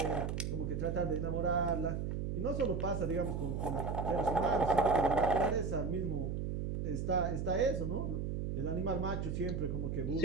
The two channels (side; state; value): right; noise; hum, 2 dB below the sound